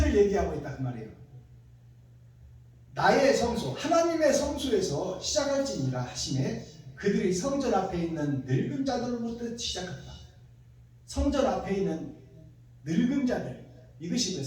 얘기하고 있다 그 말이에요. 나의 성소, 하나님의 성소에서 시작할지니라 하시매 그들이 성전 앞에 있는 늙은 자들로부터 시작한다. 성전 앞에 있는 늙은 자들. 이것이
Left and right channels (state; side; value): identical; both; correlation 1.00